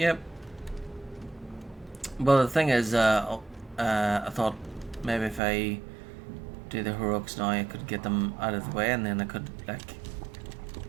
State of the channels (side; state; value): left; drops out; at 5.4 s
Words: Well, the thing is, I thought maybe if I do the heroics now, I could get them out of the way, and then I could like